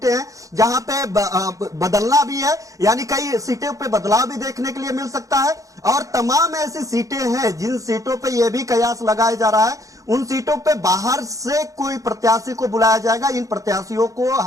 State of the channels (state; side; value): late; left; 0.16 ms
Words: हैं जहां पे बदलना भी है, यानी कई सीटों पे बदलाव भी देखने के लिए मिल सकता है। और तमाम ऐसी सीटें हैं जिन सीटों पे यह भी कयास लगाया जा रहा है, उन सीटों पे बाहर से कोई प्रत्याशी को बुलाया जाएगा। इन प्रत्याशियों को